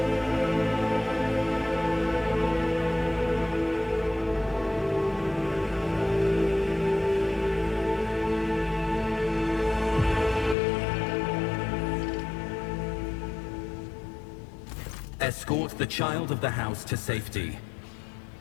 Escort the child of the house to safety.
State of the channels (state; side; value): drops out; right; at 10.6 s